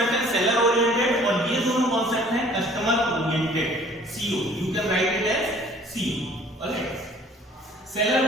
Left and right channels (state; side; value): normal; both; correlation 0.53